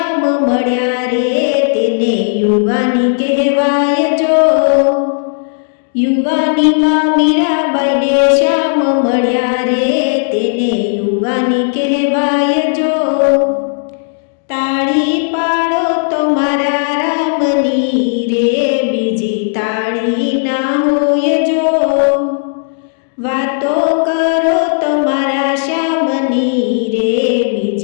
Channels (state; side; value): silent; right; digital silence